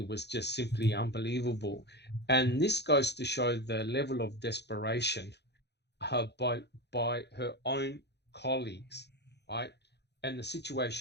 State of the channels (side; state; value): right; late; 0.49 ms